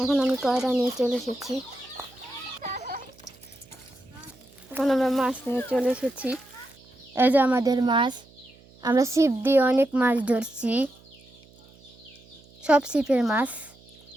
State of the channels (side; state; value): right; noise; hum, 26 dB below the sound